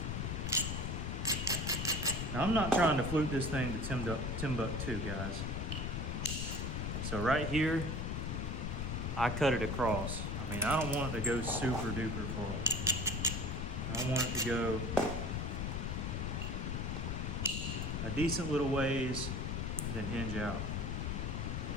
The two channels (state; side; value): noise; left; rumble, 2 dB below the sound